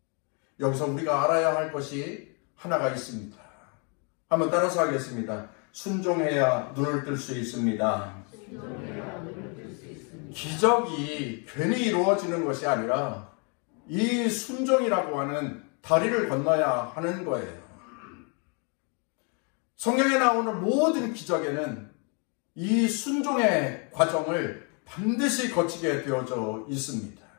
여기서 우리가 알아야 할 것이 하나가 있습니다. 한번 따라서 하겠습니다. 순종해야 눈을 뜰 수 있습니다. 기적이 괜히 이루어지는 것이 아니라 이 순종이라고 하는 다리를 건너야 하는 거예요. 성경에 나오는 모든 기적에는 이 순종의 과정을 반드시 거치게 되어져 있습니다.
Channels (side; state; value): right; quieter; 36.1 dB